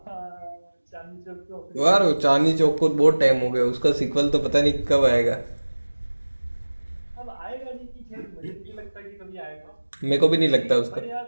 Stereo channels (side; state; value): both; inverted; correlation -1.00